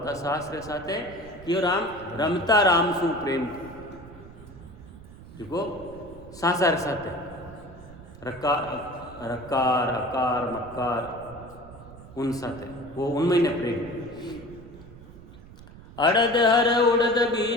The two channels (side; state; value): right; noise; rumble, 18 dB below the sound